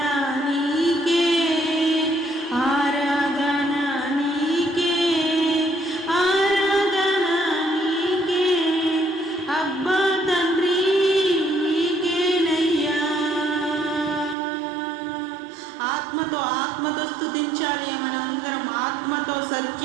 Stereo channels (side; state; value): left; drops out; at 14.4 s